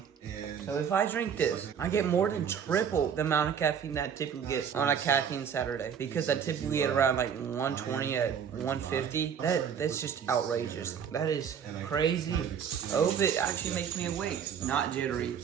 So if I drink this, I get more than triple the amount of caffeine that I typically get on a caffeine Saturday. Because I typically get around like 120 at 150. That's just outrageous. That is crazy. I hope it actually makes me awake. Not jittery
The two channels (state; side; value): quieter; left; 7.7 dB